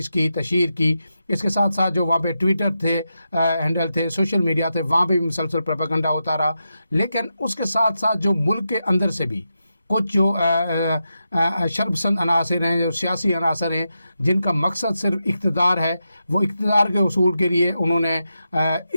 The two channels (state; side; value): inverted; both; correlation -0.88